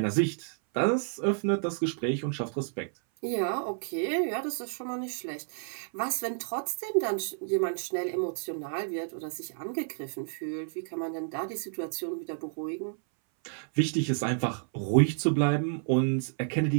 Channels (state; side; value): silent; left; 58 dB below the other